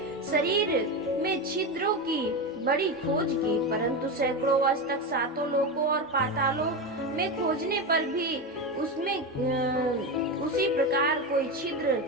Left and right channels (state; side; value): normal; both; correlation 0.17